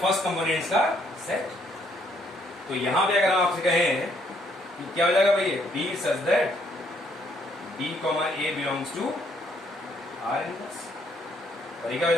कंपोनेंट्स का सेट। तो यहां पे अगर हम आपसे कहें कि क्या हो जाएगा भाई, B such that B comma A belongs to R inverse, और ये क्या हो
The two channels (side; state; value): both; normal; correlation 0.69